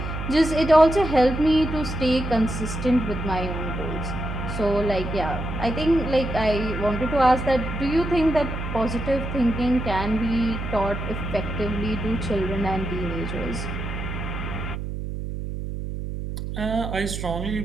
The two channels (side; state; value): right; noise; hum, 5 dB below the sound